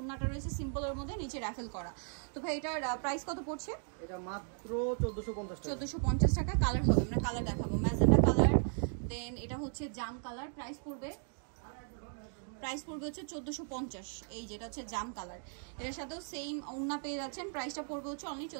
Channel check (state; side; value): silent; left; 53 dB below the other